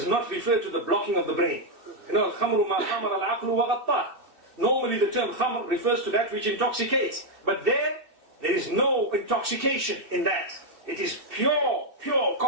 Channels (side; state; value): left; late; 2.6 ms